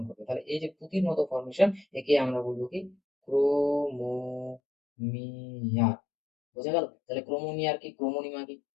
করবে। তাহলে এই যে পুঁতির মতো ফর্মেশন একে আমরা বলবো কি? ক্রোমোমিয়ার। বোঝা গেল? তাহলে ক্রোমোমিয়ার কি ক্রোমোনিমা কি?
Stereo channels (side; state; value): right; drops out; at 4.6 s